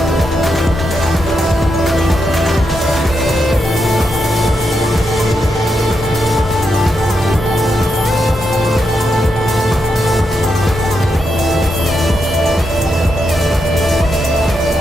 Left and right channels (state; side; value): normal; both; correlation 0.84